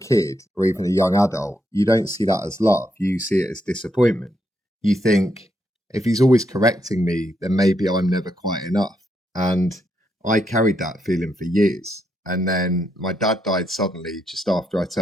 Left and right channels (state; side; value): normal; both; correlation 0.79